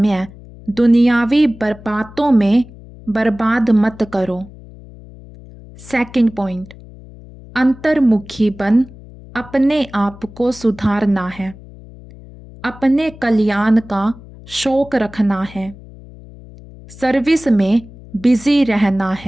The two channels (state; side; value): noise; left; hum, 19 dB below the sound